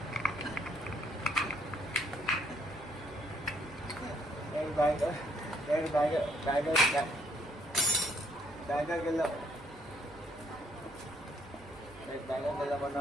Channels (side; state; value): right; noise; hum, 22 dB below the sound